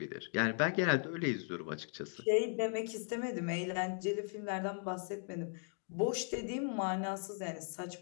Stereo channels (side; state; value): right; silent; 53 dB below the other